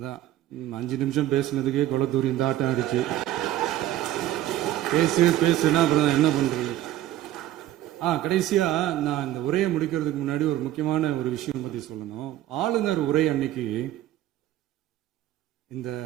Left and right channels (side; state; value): left; quieter; 13.2 dB